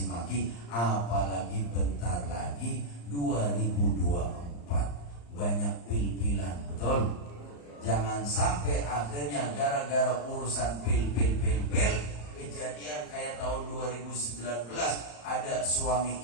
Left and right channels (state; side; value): late; right; 35 ms